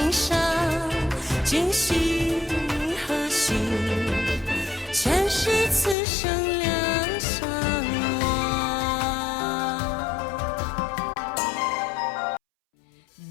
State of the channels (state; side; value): drops out; right; at 6.0 s